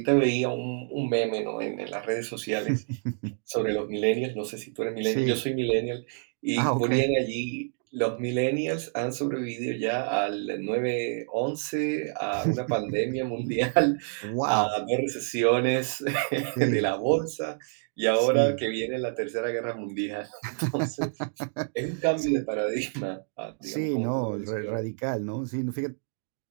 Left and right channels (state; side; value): silent; left; digital silence